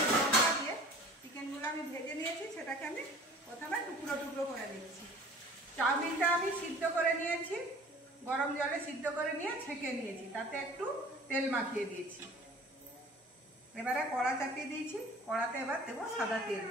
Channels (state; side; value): normal; both; correlation 0.47